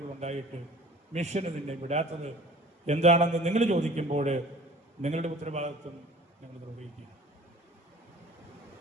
മിഷന് നിന്നെ വിടാത്തത് എന്താണെന്ന് നിങ്ങൾ ചോദിക്കുമ്പോൾ നിങ്ങളുടെ ഉത്തരവാദിത്വം നിങ്ങൾ നിർവഹിക്കുക.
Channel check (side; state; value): both; normal; correlation 0.46